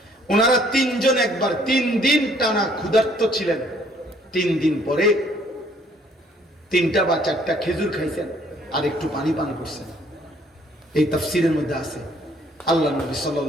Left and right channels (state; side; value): normal; both; correlation 0.62